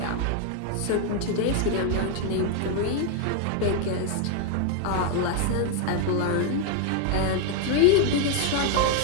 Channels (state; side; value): different; both; correlation 0.00